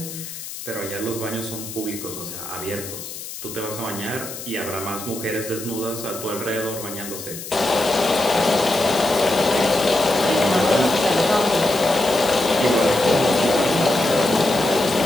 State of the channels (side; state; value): left; noise; hiss, 11 dB below the sound